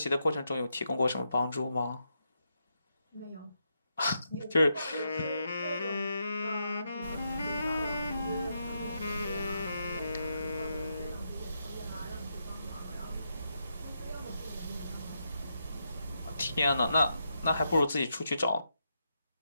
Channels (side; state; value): both; inverted; correlation -0.82